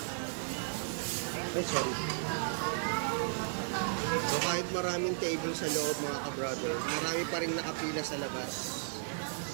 Ay, sorry. So kahit maraming table sa loob mga ka-brother, marami pa rin nakapila sa labas.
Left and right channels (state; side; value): silent; left; 55 dB below the other